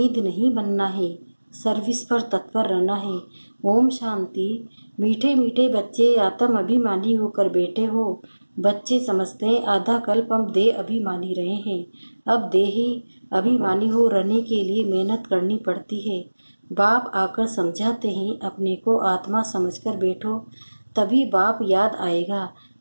नहीं बनना है, सर्विस पर तत्पर रहना है। ओम शांति। मीठे मीठे बच्चे, आत्म अभिमानी होकर बैठे हो। बच्चे समझते हैं आधा कल्प हम देह अभिमानी रहे हैं, अब देही अभिमानी हो रहने के लिए मेहनत करनी पड़ती है। बाप आकर समझाते हैं, अपने को आत्मा समझकर बैठो, तभी बाप याद आएगा,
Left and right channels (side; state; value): both; inverted; correlation -1.00